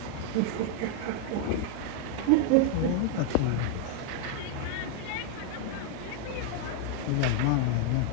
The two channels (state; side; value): different; both; correlation 0.00